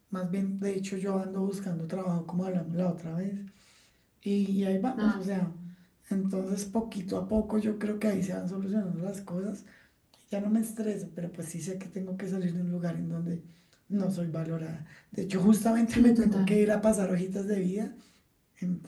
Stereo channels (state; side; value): identical; both; correlation 1.00